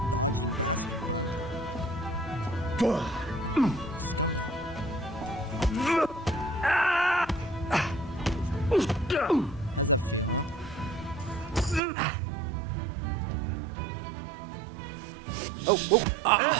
Dodging bastard, bud. Scumbag. How's that feel, huh?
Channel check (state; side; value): drops out; left; at 11.8 s